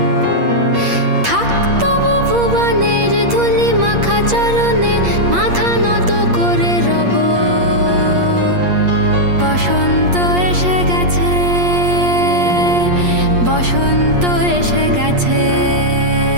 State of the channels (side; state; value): left; late; 8.4 ms